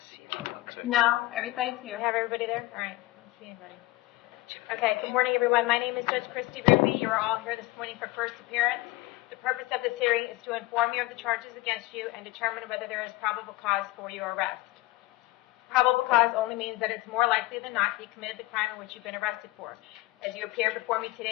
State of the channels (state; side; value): quieter; right; 19.7 dB